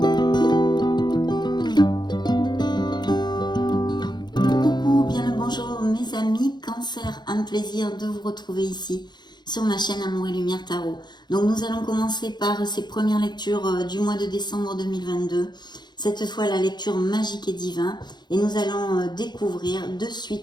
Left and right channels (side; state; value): right; late; 0.21 ms